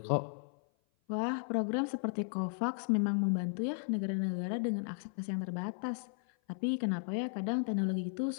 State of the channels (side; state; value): right; silent; 54 dB below the other